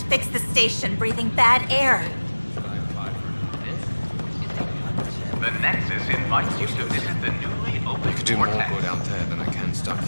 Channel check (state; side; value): inverted; both; correlation -1.00